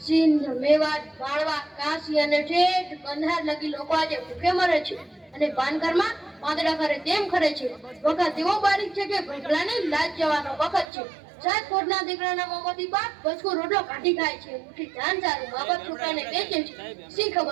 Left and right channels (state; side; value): drops out; left; at 10.9 s